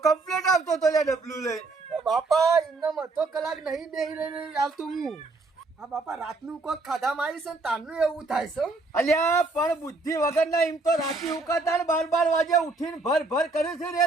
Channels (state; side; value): quieter; left; 3.4 dB